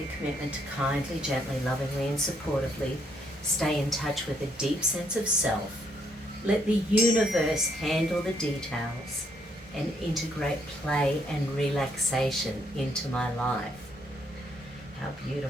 commitment to kindly, gently, lovingly and supportively stay in touch with a deep sense of self. Let the universe handle the details and integrate play and relaxation into my life. How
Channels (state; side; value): normal; both; correlation 0.71